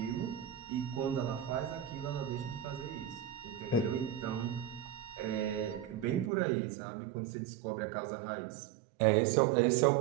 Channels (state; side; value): drops out; left; at 6.3 s